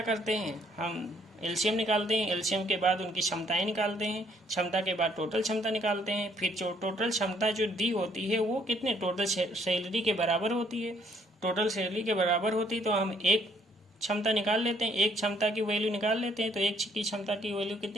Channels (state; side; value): normal; both; correlation 0.66